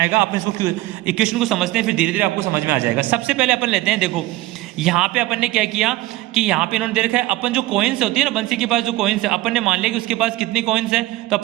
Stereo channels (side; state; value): left; quieter; 17.7 dB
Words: अपन इसको इक्वेशन को समझते हैं फिर धीरे धीरे आपको समझ में आ जाएगा। सबसे पहले अपन लेते हैं, देखो यहाँ पे अपन ने क्या किया कि यहाँ पे इन्होंने दे रखा है, अपन जो कॉइन्स होती है ना, बंसी के पास जो कॉइन्स है, अपन ने मान लिया कि उसके पास कितनी कॉइन्स है, तो